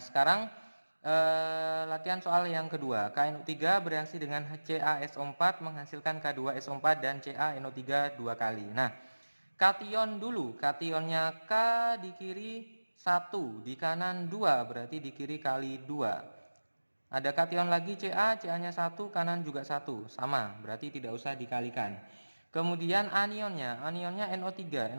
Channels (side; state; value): both; inverted; correlation -1.00